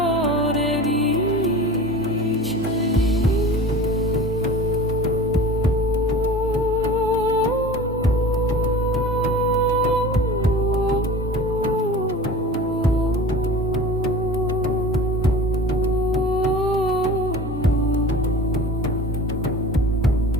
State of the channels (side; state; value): both; normal; correlation 0.37